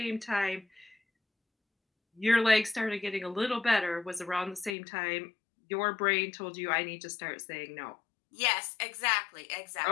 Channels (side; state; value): right; drops out; at 4.8 s